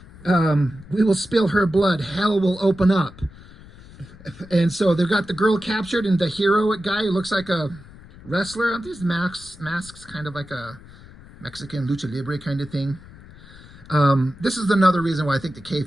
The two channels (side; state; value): left; noise; rumble, 20 dB below the sound